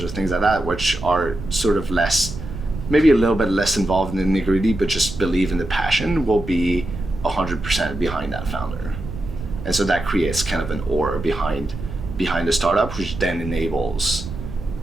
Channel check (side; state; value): right; noise; rumble, 10 dB below the sound